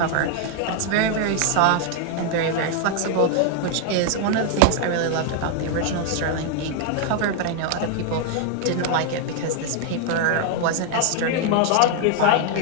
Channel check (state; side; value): different; both; correlation 0.00